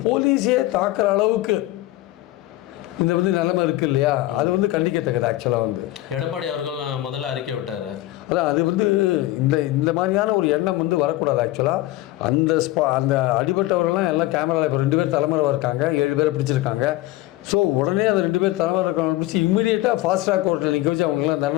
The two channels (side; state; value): right; quieter; 17.0 dB